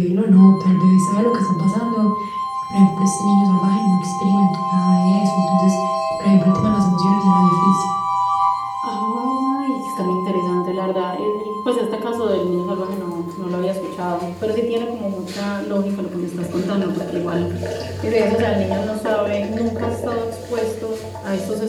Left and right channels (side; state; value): both; identical; correlation 1.00